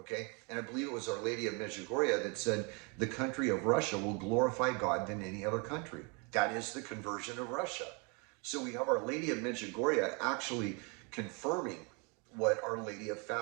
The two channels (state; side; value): quieter; left; 32.4 dB